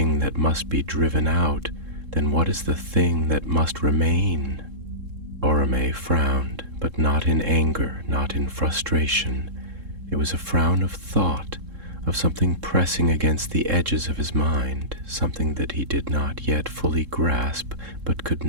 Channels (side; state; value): left; late; 3.7 ms